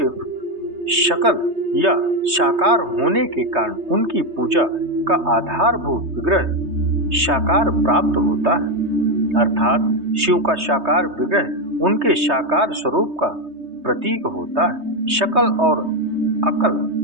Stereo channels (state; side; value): late; left; 3.2 ms